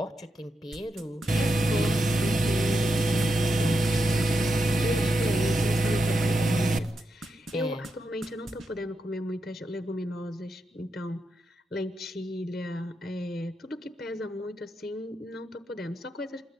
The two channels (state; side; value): normal; both; correlation 0.86